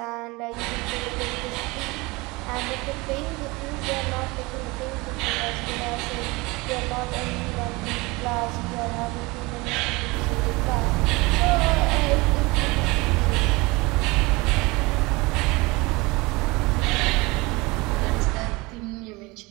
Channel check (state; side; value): quieter; left; 24.0 dB